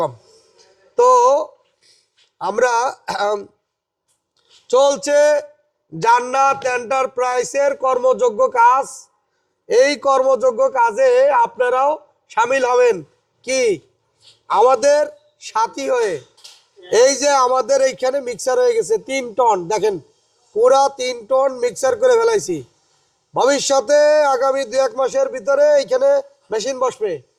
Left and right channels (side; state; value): both; identical; correlation 1.00